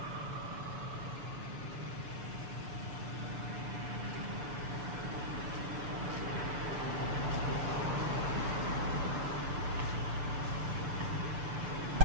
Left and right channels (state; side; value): late; left; 6.8 ms